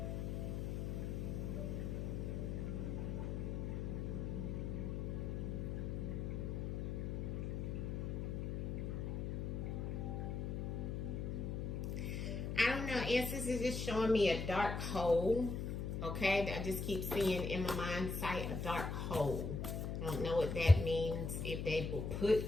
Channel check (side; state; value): left; noise; hum, 2 dB below the sound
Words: I don't know, ancestors is just showing me a dark hole, okay? I just keep seeing in my mind sight a dark hole. I don't know what that means, if they were put